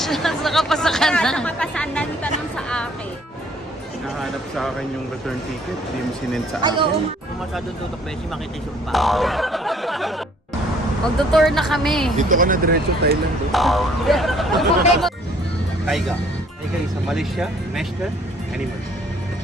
Nakapasa ka na. Nakapasaan na yung tanong sa akin. Hinahanap sa akin yung return ticket, hindi mo sinend sa Ay, oo. akin. Kung masyadong tutok Beshi, makita yung sumpa. Magtutour na kami. Dito ka na diretso Thailand. Taiga. Taiga is a Malaysia master animal.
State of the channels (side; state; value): both; normal; correlation 0.60